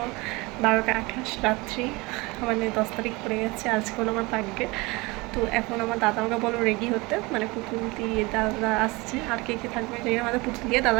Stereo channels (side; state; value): left; quieter; 24.3 dB